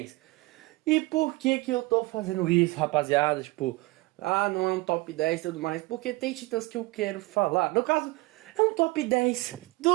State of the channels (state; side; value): quieter; left; 21.9 dB